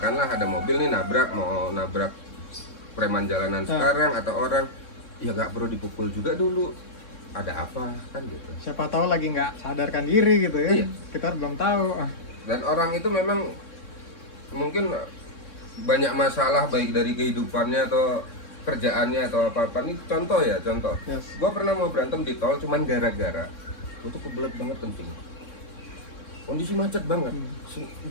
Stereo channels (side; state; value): right; late; 3.6 ms